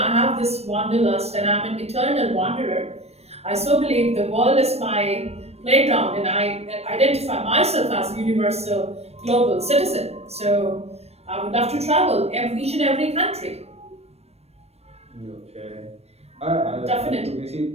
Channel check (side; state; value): left; late; 0.31 ms